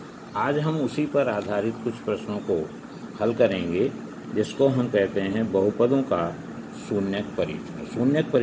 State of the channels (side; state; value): both; identical; correlation 1.00